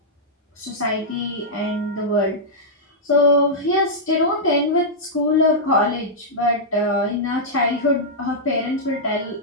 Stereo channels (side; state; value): both; normal; correlation -0.09